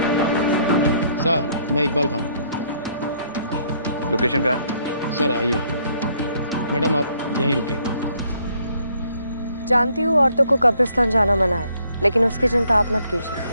सर, मैं इकबाल खान। लोकेशन कहाँ है? सर आइए। मैडम आप यहीं रुकिए। जानती हूँ औरतों को कब्रिस्तान जाना मना है, लेकिन उसकी चिंता आप मत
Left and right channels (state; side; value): inverted; both; correlation -0.67